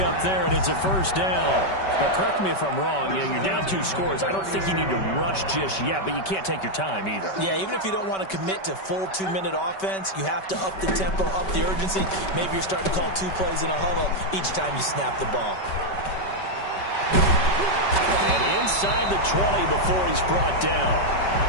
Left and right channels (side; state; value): right; late; 5.2 ms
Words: up there, and it's a first down. Now, correct me if I'm wrong. You're down 2 scores. I don't think you need to rush just yet, but you can't take your time either. Yeah, even if you don't want to commit to full 2-minute offense, you have to up the tempo, up the urgency. Maybe you're starting to call 2 plays in a huddle each time you snap the ball. And inside the 20 before he's brought down.